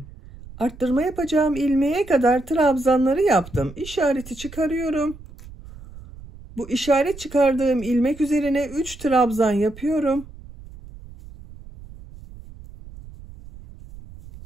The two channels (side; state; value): right; noise; rumble, 17 dB below the sound